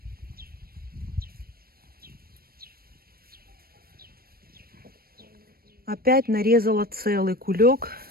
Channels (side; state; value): left; late; 0.44 ms